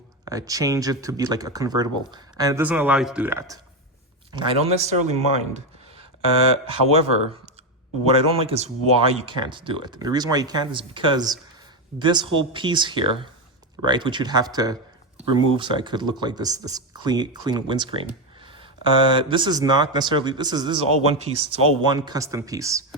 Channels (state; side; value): normal; both; correlation 0.10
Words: change it to be like a convertible. And it doesn't allow you to do that. I don't necessarily mind. However, what I don't like is why you can't do it. And the reason why you can't is because this whole piece here, right, which you'd have to remove so I could look like this clean windscreen. This is not necessarily, this is all one piece. It's all one custom piece.